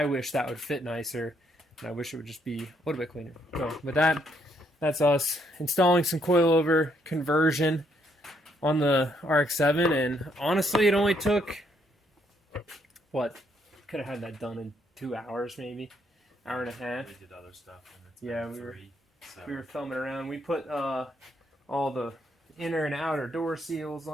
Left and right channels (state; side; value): normal; both; correlation 0.73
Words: wish that would fit nicer, and I wish it would just be a little bit cleaner. So with that, that's us installing some coilover conversion on the RX7, and honestly, it only took, what, could have had that done in 2 hours maybe, hour and a half. We did other stuff. And it's yeah, we were filming around. We put all the inner and outer door seals